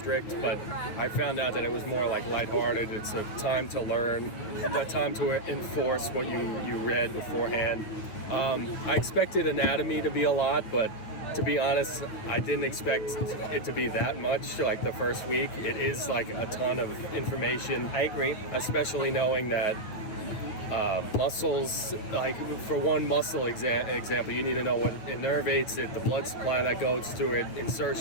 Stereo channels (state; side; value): late; right; 9.1 ms